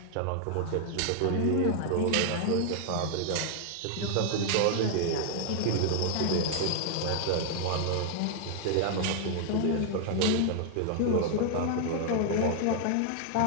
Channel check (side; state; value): both; different; correlation 0.00